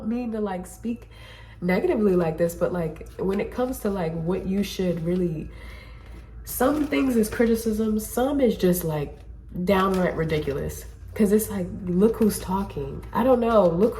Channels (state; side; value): identical; both; correlation 1.00